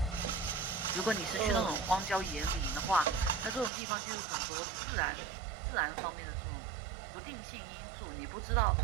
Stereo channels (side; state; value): left; drops out; at 3.7 s